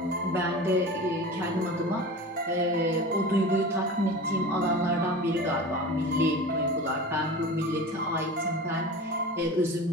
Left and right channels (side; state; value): both; normal; correlation 0.34